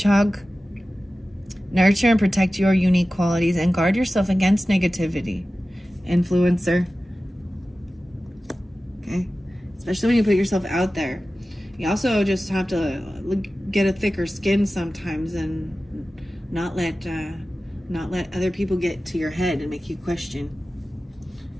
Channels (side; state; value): both; normal; correlation 0.95